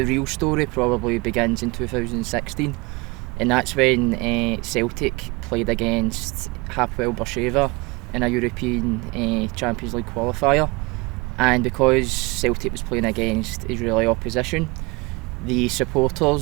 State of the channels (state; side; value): quieter; left; 25.6 dB